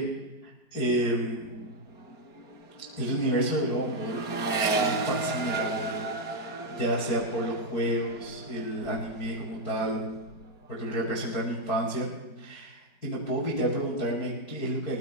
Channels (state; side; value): late; right; 4.4 ms